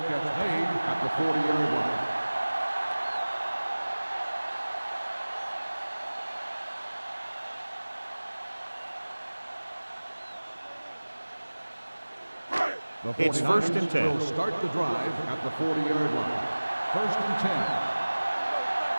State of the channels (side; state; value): both; inverted; correlation -1.00